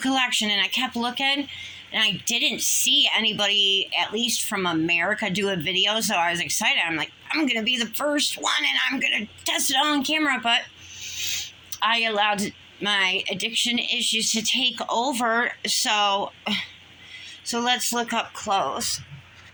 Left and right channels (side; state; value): both; identical; correlation 1.00